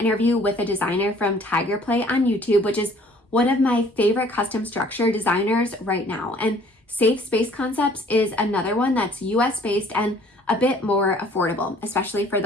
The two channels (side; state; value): both; normal; correlation 0.56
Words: with a designer from Tiger Play on YouTube, which is one of my favorite custom structure designers right now. And Safe Space Concepts is another one that's US based and a bit more affordable, especially for